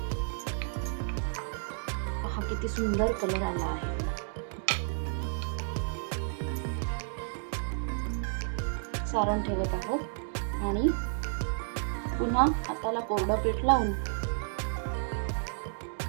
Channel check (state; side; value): silent; left; digital silence